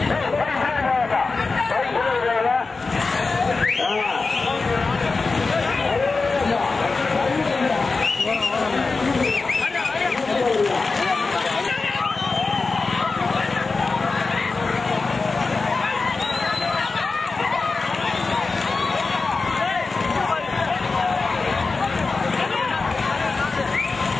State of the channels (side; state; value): right; quieter; 4.0 dB